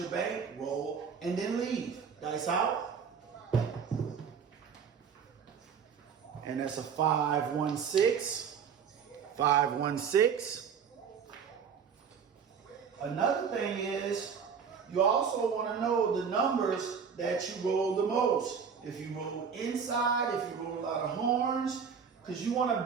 bank roll, and then leave. Dice out. And that's a 5-1-6. 5-1-6. Another thing is, you also want to know the numbers that you roll the most. If you roll inside, if you roll a lot of horns, because you want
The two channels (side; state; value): left; quieter; 6.7 dB